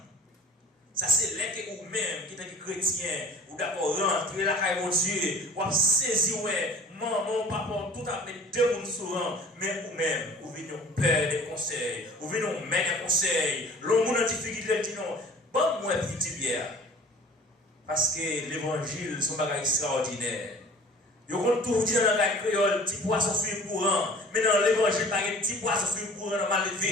Ça c'est là que vous-même, qui êtes chrétien, vous d'accord rentrer la caille de Dieu, vous avez saisi, ouais, maman, papa, tout à fait deux mondes souvent, mais vous-même, vous venez nous père des conseils, vous venez nous mettre des conseils, l'homme en difficulté dit non, bon, moi, petit bière. Parce que l'évangile, c'est un bagage extraordinaire. Vous comptez toujours dire dans la créole, petit poisson sur le courant, mais dans l'évangile, il n'y a pas de petit poisson sur le courant mal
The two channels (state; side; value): normal; both; correlation 0.47